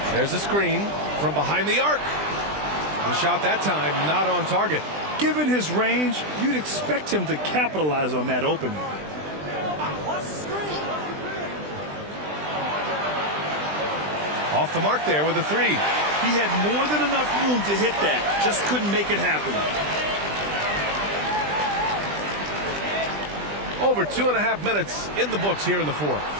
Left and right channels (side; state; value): left; late; 20 ms